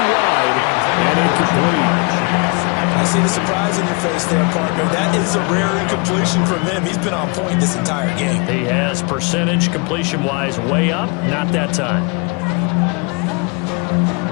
wide and incomplete. I see the surprise in your face there, partner. That is a rare incompletion from him. He's been on point this entire game. He has percentage completion-wise way up. Not that time.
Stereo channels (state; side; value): quieter; right; 32.0 dB